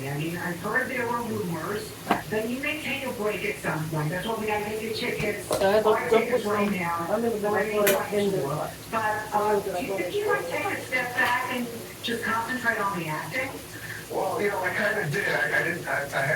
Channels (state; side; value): identical; both; correlation 1.00